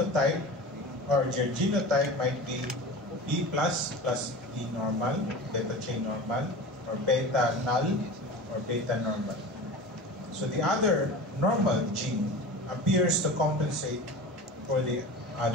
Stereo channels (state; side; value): normal; both; correlation 0.33